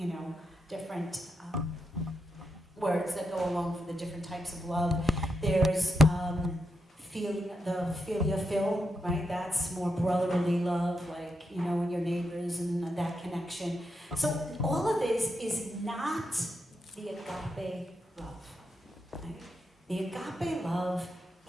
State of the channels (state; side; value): normal; both; correlation 0.84